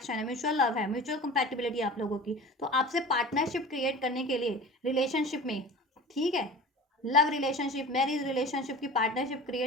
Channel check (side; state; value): both; normal; correlation 0.37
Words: है, म्यूचुअल लव है, म्यूचुअल कंपैटिबिलिटी आप लोगों की। तो आपसे पार्टनरशिप क्रिएट करने के लिए रिलेशनशिप में, ठीक है, लव रिलेशनशिप, मैरिज रिलेशनशिप की पार्टनरशिप